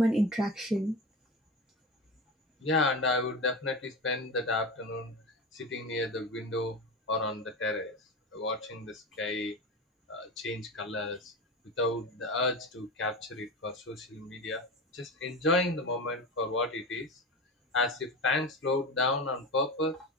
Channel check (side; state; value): both; normal; correlation 0.25